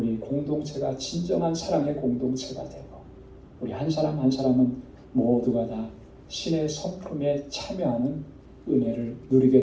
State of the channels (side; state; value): both; identical; correlation 1.00